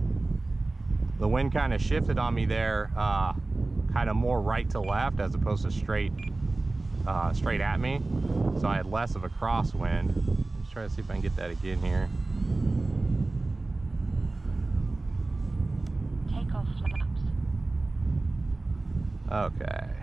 The wind kind of shifted on me there kind of more right to left as opposed to straight at me. So I had less of a crosswind. Let's try to see if I can get that again here. Take off flaps. Okay.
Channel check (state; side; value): quieter; left; 3.2 dB